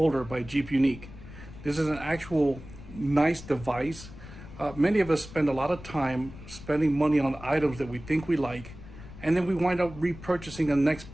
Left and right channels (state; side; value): noise; left; rumble, 15 dB below the sound